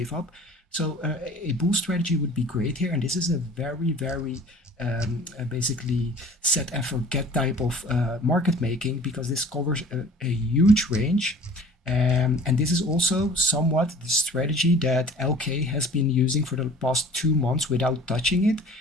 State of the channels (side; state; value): both; normal; correlation 0.46